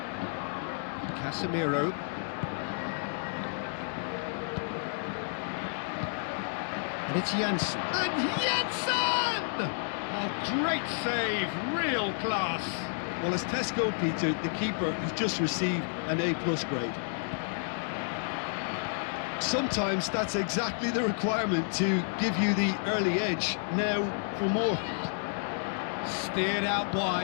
Casemiro. And it's Janssen. And Janssen! Oh, great save, real class. Well, as Tesco, Peter, the keeper has just received an A+ grade. Sometimes that's exactly the requirement to give you the early edge. Now for more. Steered out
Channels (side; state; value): right; silent; digital silence